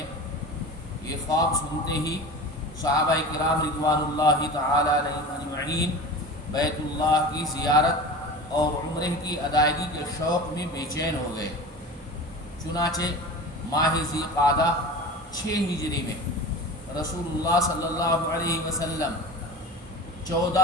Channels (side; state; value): both; normal; correlation 0.34